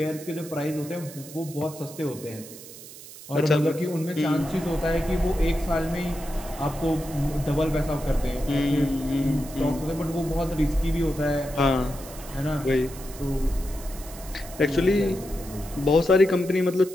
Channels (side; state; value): right; noise; hiss, 16 dB below the sound